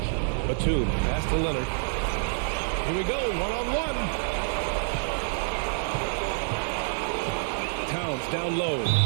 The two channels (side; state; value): left; silent; 60 dB below the other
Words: Batum, pass to Leonard. Here we go, one-on-one. Down low,